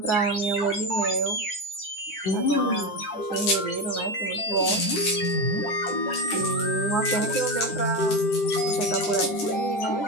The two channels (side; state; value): right; late; 10 ms